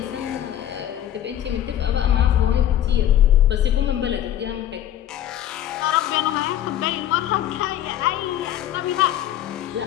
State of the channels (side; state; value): right; quieter; 11.5 dB